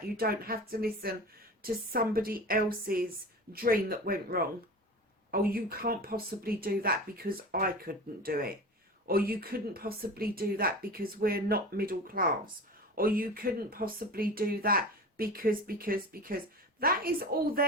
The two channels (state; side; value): normal; both; correlation 0.33